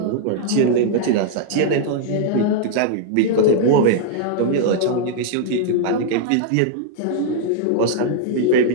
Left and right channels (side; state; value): both; different; correlation -0.01